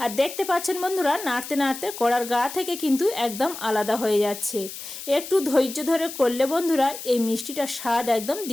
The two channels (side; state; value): left; noise; hiss, 11 dB below the sound